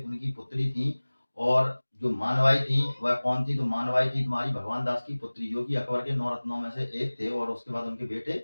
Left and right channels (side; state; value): both; inverted; correlation -1.00